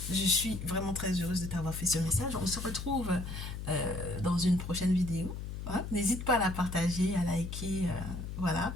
je suis vraiment très heureuse de t'avoir fait ce message. On se retrouve dans une prochaine vidéo. Hein. N'hésite pas à la partager, à liker. Voilà.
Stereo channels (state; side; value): noise; left; hum, 7 dB below the sound